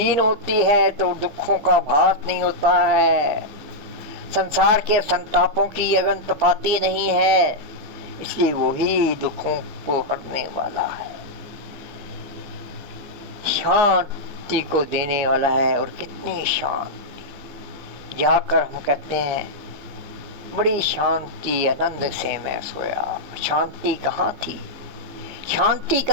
होती है तो दुखों का भास नहीं होता है, संसार के संतापों की अगन तपाती नहीं है। इसलिए वही दुखों को हरने वाला है, शांति को देने वाला है। और कितनी शांति, जाकर हम कहते हैं बड़ी शांति आनंद से मैं सोया। शांति कहाँ थी? शांति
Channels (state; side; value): late; left; 15 ms